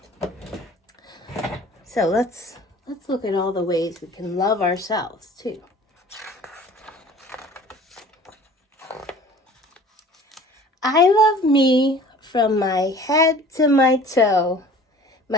So let's look at all the ways we can love ourselves too. I love me from my head to my toe.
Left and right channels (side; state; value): both; normal; correlation 0.46